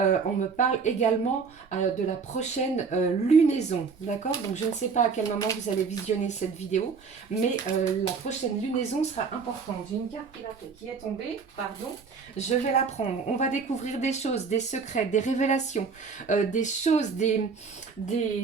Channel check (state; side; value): quieter; left; 5.3 dB